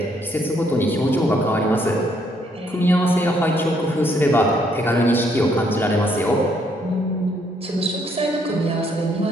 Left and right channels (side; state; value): both; normal; correlation 0.70